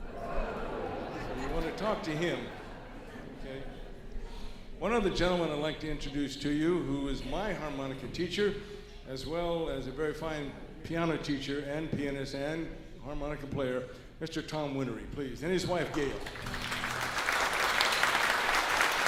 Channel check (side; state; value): both; identical; correlation 1.00